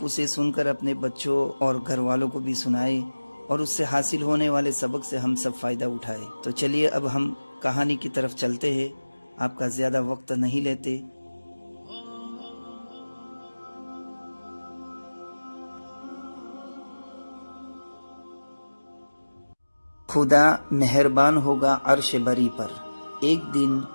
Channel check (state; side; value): inverted; both; correlation -1.00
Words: اسے سن کر اپنے بچوں اور گھر والوں کو بھی سنائیں اور اس سے حاصل ہونے والے سبق سے ہم سب فائدہ اٹھائے۔ تو چلیے اب ہم کہانی کی طرف چلتے ہیں، آپ کا زیادہ وقت نہیں لیتے۔ خدا مہربان ہوگا عرش بری پر۔ ایک دن